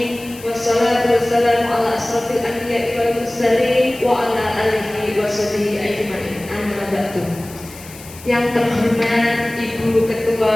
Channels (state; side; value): noise; left; hiss, 18 dB below the sound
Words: Wassalatu wassalamu ala asrofil anbiya'i wal mursalin wa ala alihi washabihi ajmain. Amma ba'du. Yang terhormat Ibu Ketua